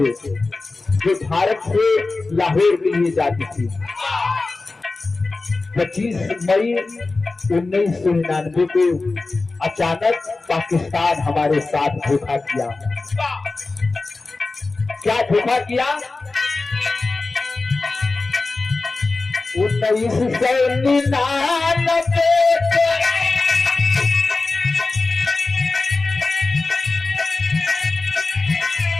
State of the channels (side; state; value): right; quieter; 3.6 dB